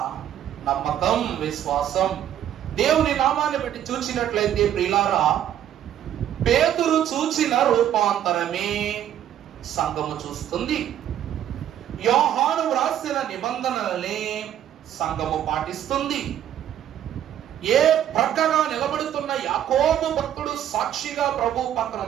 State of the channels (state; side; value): quieter; left; 10.8 dB